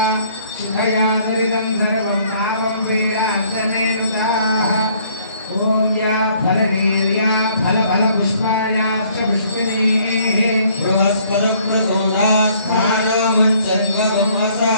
शिवयादरिदं सर्वं पापं पीडान्तमेनुताः ॐ या फलनीर्या फलफलपुष्पायाश्च पुष्पिणीः बृहस्पतिप्रसूदास्थानं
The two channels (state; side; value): inverted; both; correlation -0.61